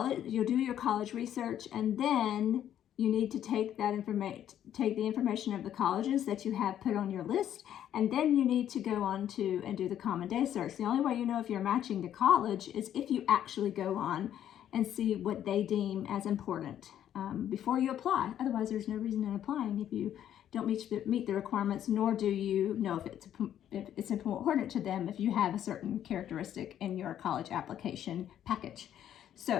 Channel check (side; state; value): right; quieter; 10.6 dB